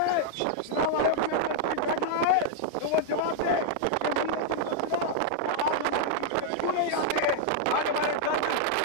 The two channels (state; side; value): different; both; correlation -0.01